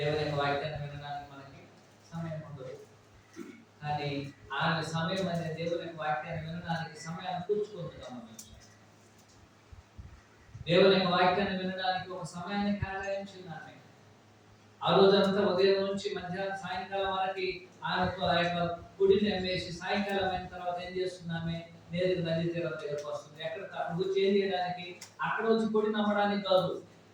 యొక్క వాక్యాన్ని వినడానికి మనకి సమయం ఉండదు. కానీ ఆమె సమయం అనేది దేవుని యొక్క వాక్యాన్ని వినడానికి సమయాన్ని కూర్చుకుంటున్నాం. దేవుని యొక్క వాక్యాన్ని వినడానికి ఒక సమయాన్ని కేటాయించింది ఆమె. ఆ రోజంతా ఉదయం నుంచి మధ్యాహ్నం సాయంకాలం వరకు ఆమె ఆ యొక్క గుడిని అమ్మేసి సాయంకాలం అయిన తర్వాత ఏం చేస్తుంది? ఆమె నేరుగా నది తీరం దగ్గరకు వస్తుంది. అక్కడ వచ్చి ఏం చేయడానికి? అక్కడ వచ్చి గుడిని నమ్మడానికి కాదు,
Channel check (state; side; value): identical; both; correlation 1.00